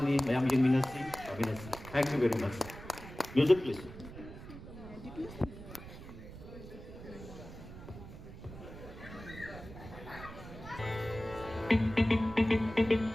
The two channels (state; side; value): noise; right; rumble, 14 dB below the sound